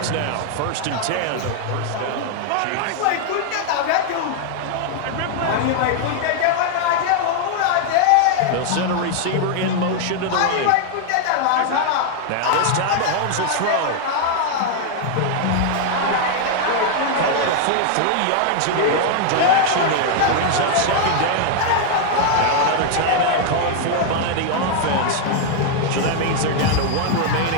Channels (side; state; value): both; different; correlation 0.00